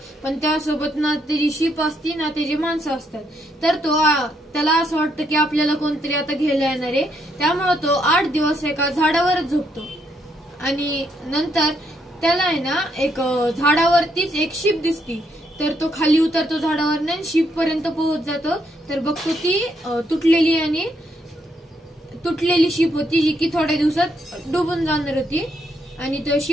पण त्यासोबत ना त्याची शिप असती ना त्याची माणसं असतात। तर त्याला असं वाटतं की आपल्याला कोणतरी आता घ्यायला येणार आहे, त्यामुळे तो 8 दिवस एका झाडावरच झोपतो। आणि नंतर त्याला आहे ना एक झाडावरतीच एक शिप दिसती, तर तो खाली उतरतो झाडावर आणि शिप पर्यंत पोहोच जातो। तर बघतो ती तुटलेली शिप होती, जी की थोड्या दिवसात डुबून जाणार होती। आणि तो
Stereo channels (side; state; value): both; normal; correlation 0.75